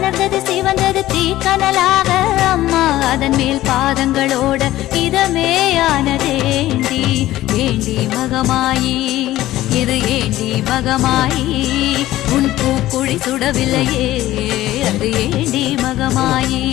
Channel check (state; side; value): quieter; right; 15.2 dB